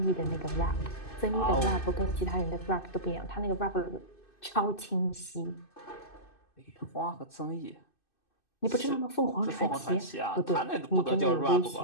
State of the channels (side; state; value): right; late; 2.6 ms